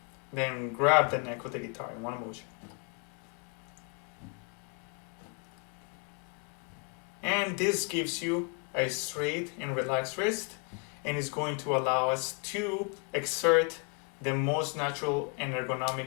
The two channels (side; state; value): right; quieter; 34.8 dB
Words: Then grab the neck of the guitar in one motion. And this gives you a straight and relaxed wrist, and is going to allow us to exert the most natural and